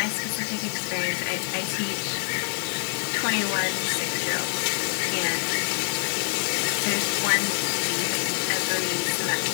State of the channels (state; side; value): silent; right; digital silence